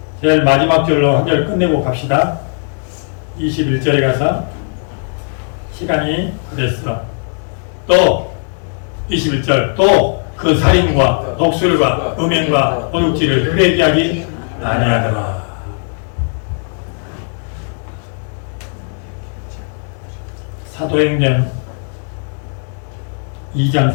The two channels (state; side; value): silent; right; 55 dB below the other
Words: 제일 마지막 절로 한 절 끝내고 갑시다. 21절에 가서 시간이 그랬어. 또 21절 또 그 살인과 독술과 음행과 도둑질을 회개하기 아니하더라. 사도행전